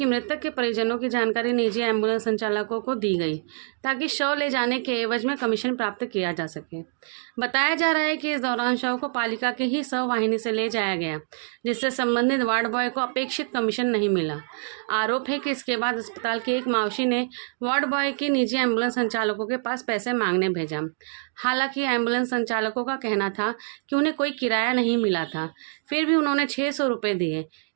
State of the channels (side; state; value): left; silent; 59 dB below the other